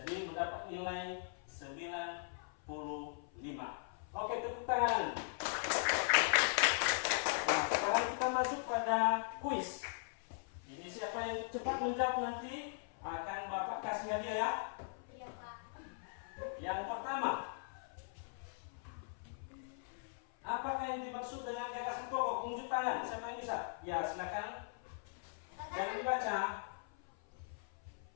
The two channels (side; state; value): right; silent; 51 dB below the other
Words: mendapat nilai 90. pertama, apakah yang dimaksud dengan gagasan pokok? Unjuk tangan, siapa yang bisa? Ya, silakan. Jangan dibaca.